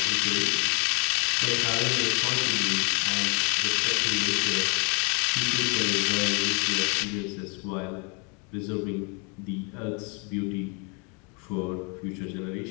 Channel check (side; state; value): right; quieter; 34.4 dB